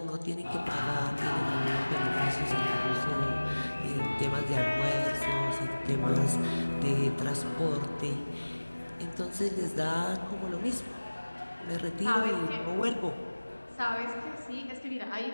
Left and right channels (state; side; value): inverted; both; correlation -1.00